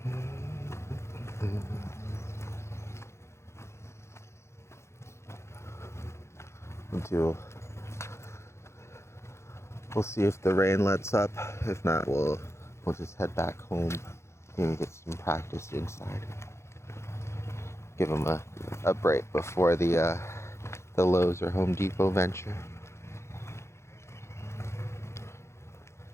We'll see if the rain lets up. If not, we'll just head back home and get some practice inside. Give him a break before the Lowe's or Home Depot venture.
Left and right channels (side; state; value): right; late; 0.13 ms